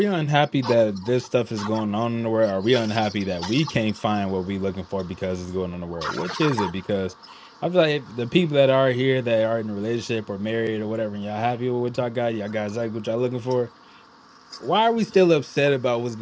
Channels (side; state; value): both; identical; correlation 1.00